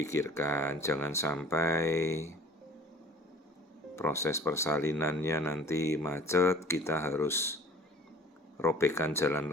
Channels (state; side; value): normal; both; correlation 0.48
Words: jangan sampai proses persalinannya nanti macet, kita harus robekkan jalan